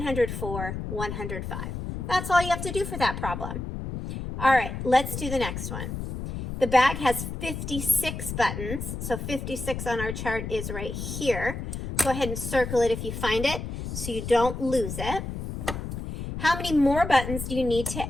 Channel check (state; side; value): noise; left; rumble, 6 dB below the sound